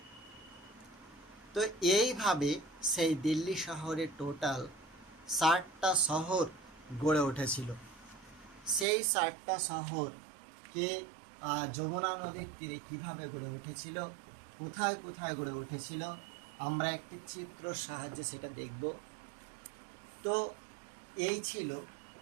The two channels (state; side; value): drops out; left; at 8.8 s